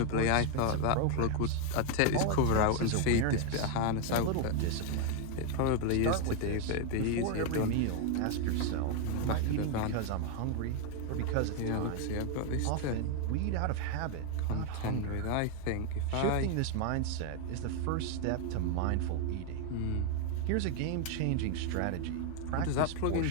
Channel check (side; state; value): both; different; correlation 0.01